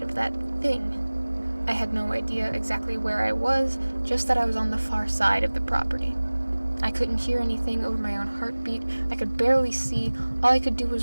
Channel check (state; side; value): inverted; both; correlation -1.00